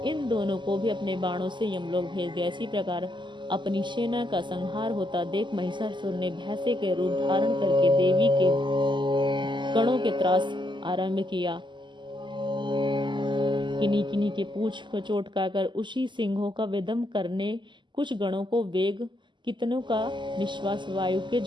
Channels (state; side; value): late; left; 0.22 ms